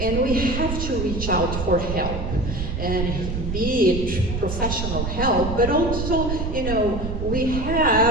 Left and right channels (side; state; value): right; noise; rumble, 4 dB below the sound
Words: we have to reach out for help, and be it professional help, but also, we